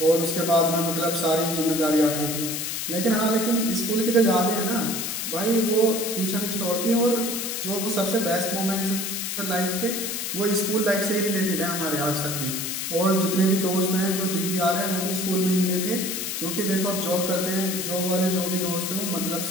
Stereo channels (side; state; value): left; noise; hiss, 3 dB below the sound